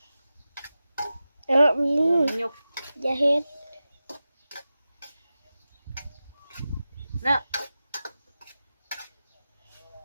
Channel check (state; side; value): inverted; both; correlation -0.94